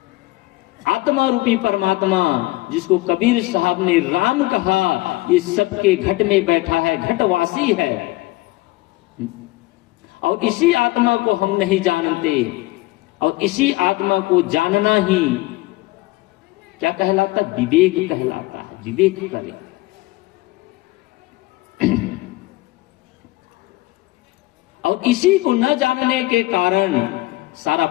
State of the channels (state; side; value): quieter; right; 20.1 dB